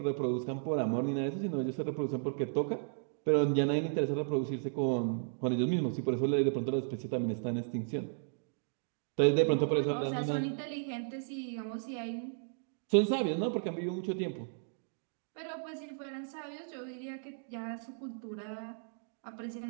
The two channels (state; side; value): silent; left; digital silence